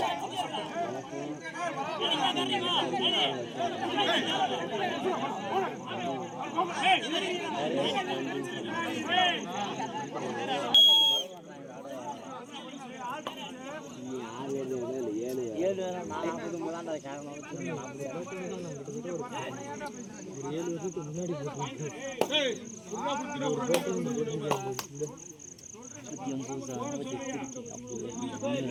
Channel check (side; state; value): both; identical; correlation 1.00